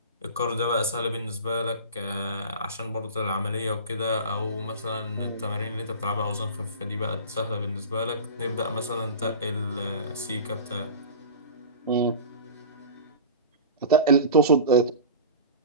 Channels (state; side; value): inverted; both; correlation -0.34